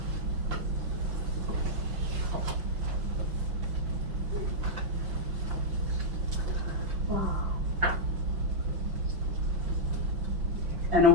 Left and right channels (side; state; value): left; late; 5.9 ms